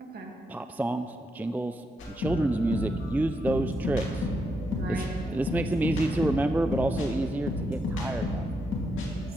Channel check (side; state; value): both; normal; correlation 0.82